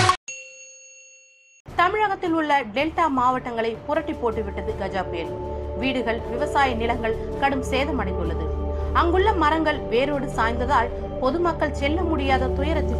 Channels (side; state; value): both; identical; correlation 1.00